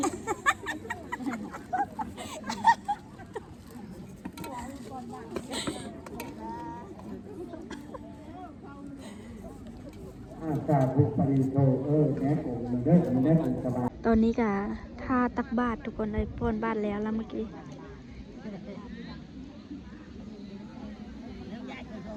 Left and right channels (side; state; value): both; identical; correlation 1.00